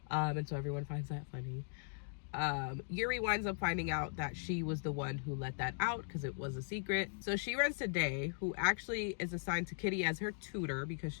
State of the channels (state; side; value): silent; right; digital silence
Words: and so everyone finds that funny. Yuri winds up finding out that she was the one who let that out because it was a secret. So she runs to Day, who actually is assigned to Kitty as her tutor because